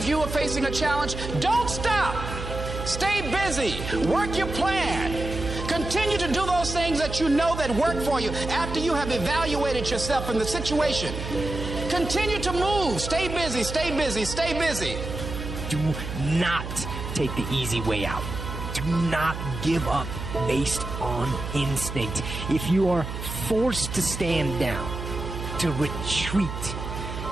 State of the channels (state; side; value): noise; right; hum, 7 dB below the sound